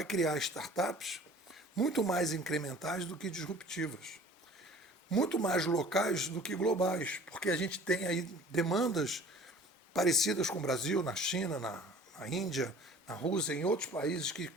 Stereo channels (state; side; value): normal; both; correlation 0.47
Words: criar startups muito mais incrementais do que disruptivas, muito mais locais do que globais, porque a gente tem aí demandas parecidas com o Brasil, na China, na Índia, na Rússia, em outros países que